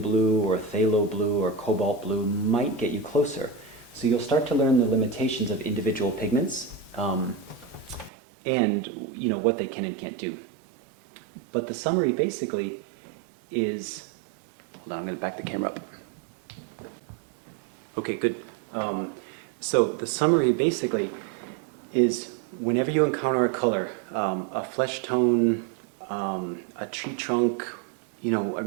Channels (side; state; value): left; drops out; at 8.1 s